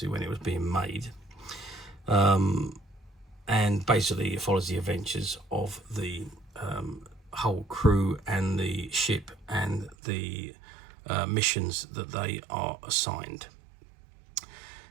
when it was being made. And basically it follows the adventures of the whole crew and the ship and the missions that they are assigned.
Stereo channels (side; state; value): left; drops out; at 10.0 s